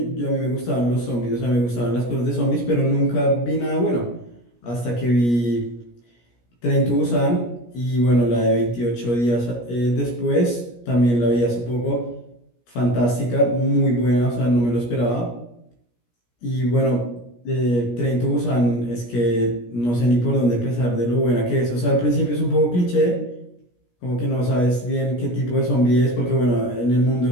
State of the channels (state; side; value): late; right; 17 ms